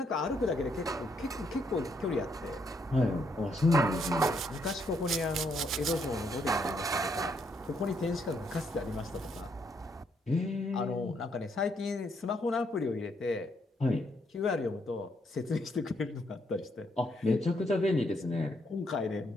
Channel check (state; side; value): normal; both; correlation 0.74